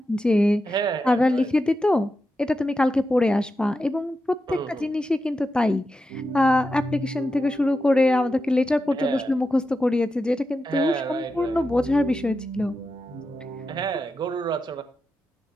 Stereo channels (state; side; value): normal; both; correlation 0.89